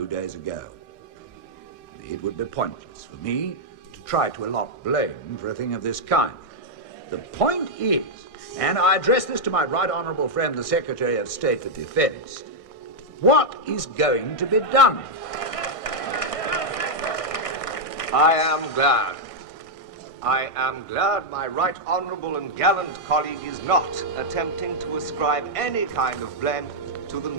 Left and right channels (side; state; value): right; late; 1.6 ms